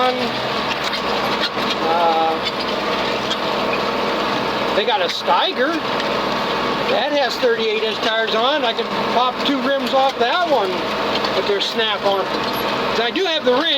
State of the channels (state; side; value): identical; both; correlation 1.00